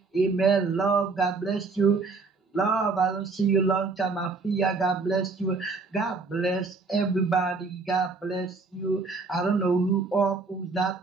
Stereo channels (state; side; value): quieter; left; 4.1 dB